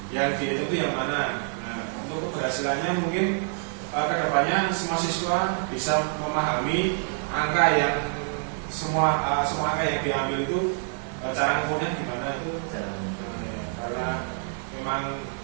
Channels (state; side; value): silent; left; 56 dB below the other